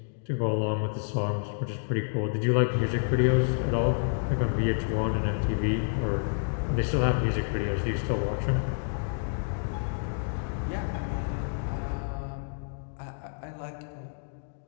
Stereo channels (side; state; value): right; silent; digital silence